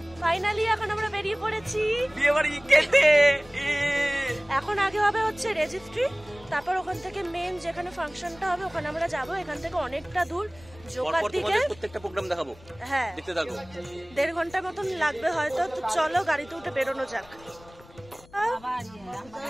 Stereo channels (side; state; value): left; noise; rumble, 23 dB below the sound